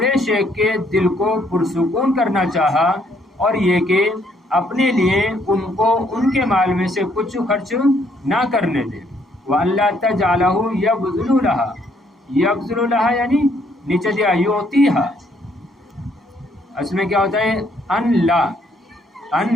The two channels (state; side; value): normal; both; correlation 0.68